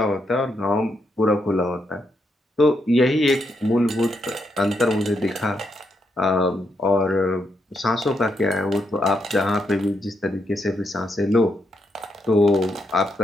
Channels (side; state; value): both; normal; correlation 0.80